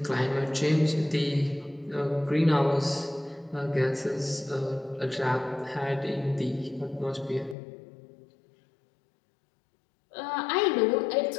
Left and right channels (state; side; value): drops out; right; at 7.6 s